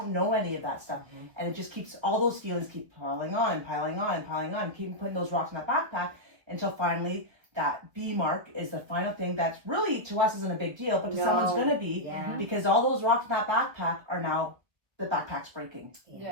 know any of that stuff. And it just keeps, all those feelings keep piling on and piling on and piling on, keep putting those rocks in that backpack until finally that B mark is the final thing that's really, to us, isn't a big deal, but to someone's going to be, because all those rocks in that backpack are now, the backpack's breaking,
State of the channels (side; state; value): left; late; 1.7 ms